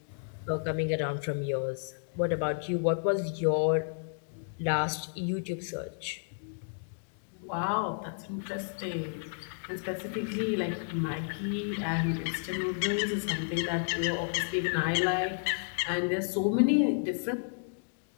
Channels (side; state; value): right; silent; digital silence